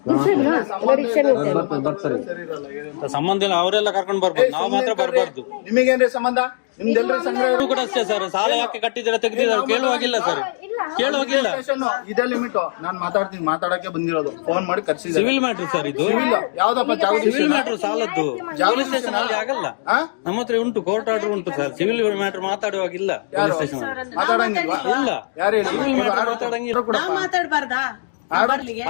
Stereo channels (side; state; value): right; silent; digital silence